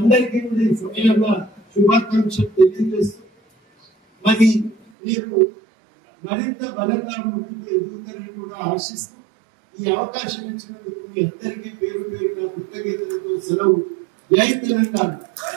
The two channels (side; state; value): left; drops out; at 4.8 s